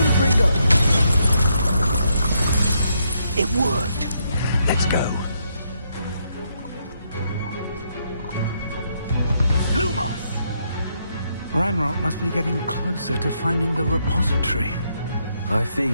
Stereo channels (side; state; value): both; inverted; correlation -0.77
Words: It worked. Let's go. Lumos! Ranrock must be getting closer to finding the repository. I fear